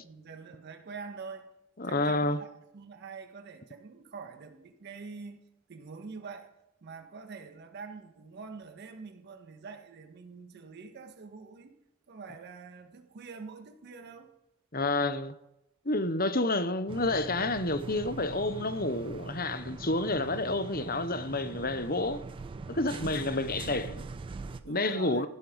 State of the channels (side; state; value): both; normal; correlation 0.10